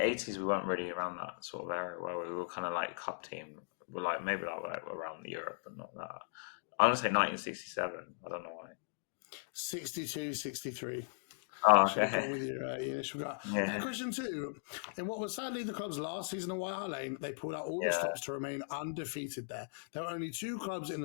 we weren't really around that sort of area where we were kind of like cup team. We're like maybe like around Europe, but not that. I'm going to say 1967. I don't know why. 62, 63. Oh, Should have gone with your initial guy. Question 2. In what was sadly the club's last season at White Hart Lane, they pulled out all the stops to remain undefeated there. There were only 2 clubs in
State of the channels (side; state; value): right; silent; digital silence